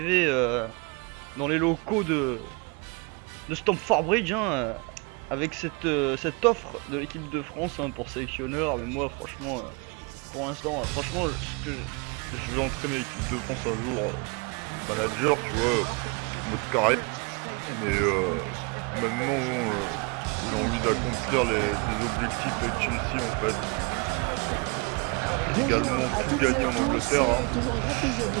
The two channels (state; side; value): quieter; left; 31.0 dB